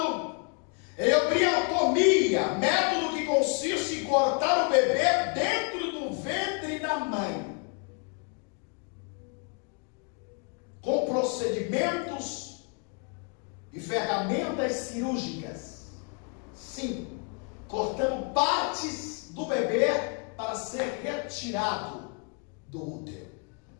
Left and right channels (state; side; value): quieter; right; 37.0 dB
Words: é a embriotomia, método que consiste em cortar o bebê dentro do ventre da mãe, com procedimentos e ferramentas cirúrgicas. Sim, cortando partes do bebê para ser retirado do útero.